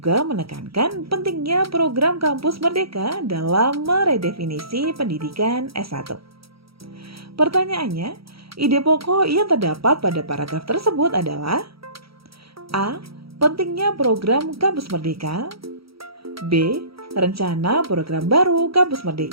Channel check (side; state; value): left; late; 0.75 ms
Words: menekankan pentingnya program Kampus Merdeka dalam meredefinisi pendidikan S1. Pertanyaannya, ide pokok yang terdapat pada paragraf tersebut adalah A. Pentingnya program Kampus Merdeka. B. Rencana program baru Kampus